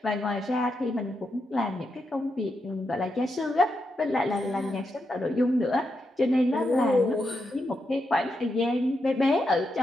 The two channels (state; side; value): normal; both; correlation 0.84